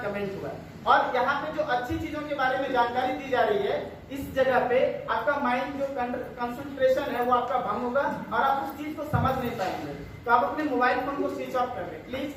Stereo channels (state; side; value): identical; both; correlation 1.00